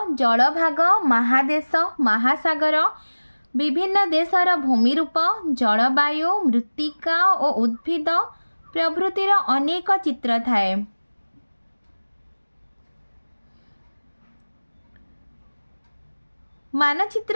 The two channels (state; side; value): inverted; both; correlation -1.00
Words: जल भाग महादेश महासागर विभिन्न देशर भूमिरूप जलवायु मृत्तिका और उद्भिद प्रभृतिर अनेक चित्र थाए।